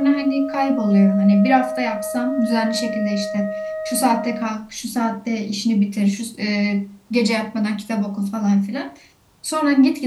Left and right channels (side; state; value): both; identical; correlation 1.00